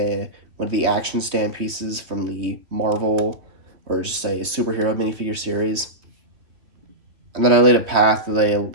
of the action stand pieces from the Marvel, or just say superhero minifigure series. And then I laid a path that they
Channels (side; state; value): left; late; 3.2 ms